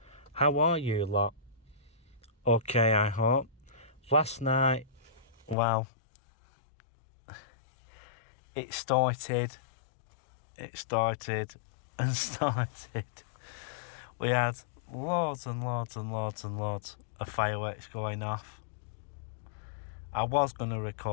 How are you lot? Okay, I hope. Last night, it started and started. We had loads and loads of fireworks going off. I was going to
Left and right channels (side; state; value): right; drops out; at 5.6 s